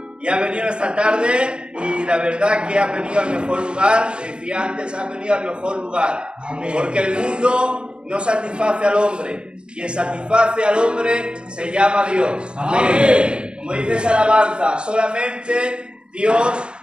y ha venido esta tarde y la verdad que ha venido al mejor lugar. Decía antes, ha venido al mejor lugar. Porque el mundo no satisface al hombre. Quien satisface al hombre se llama Dios. Amén. Como dice esa alabanza, solamente Dios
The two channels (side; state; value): left; late; 0.053 ms